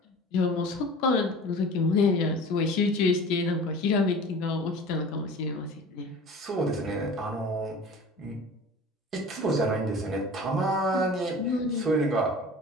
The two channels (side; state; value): both; normal; correlation 0.40